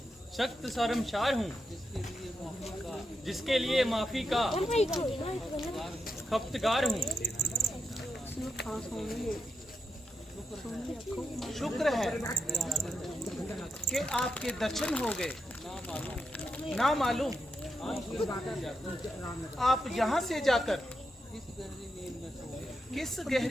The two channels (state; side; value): normal; both; correlation 0.86